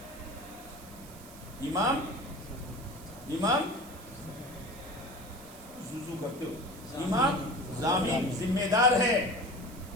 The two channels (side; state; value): right; noise; hiss, 19 dB below the sound